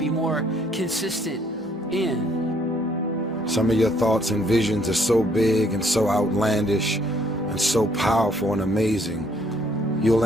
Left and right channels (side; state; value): both; normal; correlation 0.65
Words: more consistent in? Some of your thoughts and visions are so big and so outlandish and so powerful and amazing, you'll